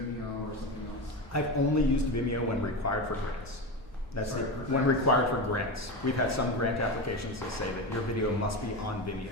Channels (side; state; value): both; normal; correlation 0.20